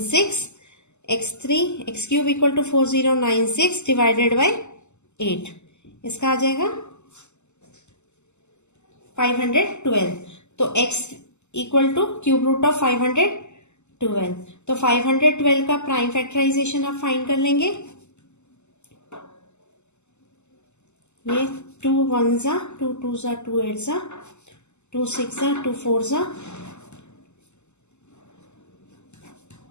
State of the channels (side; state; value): right; late; 0.83 ms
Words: X3 x cube equal to 4096 divided by 8. इसका आ जाएगा 512. तो x equal to cube root of 512। तो 512 का prime factorisation आप find कर लेंगे। ये 2 1 जा, 2 2 जा, 2 8 जा, 2 6 जा, 2 4 जा,